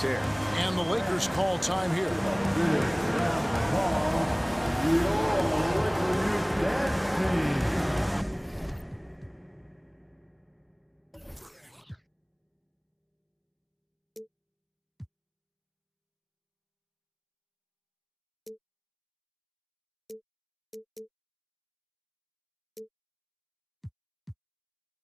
tear. And the Lakers call time here.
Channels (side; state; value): both; identical; correlation 1.00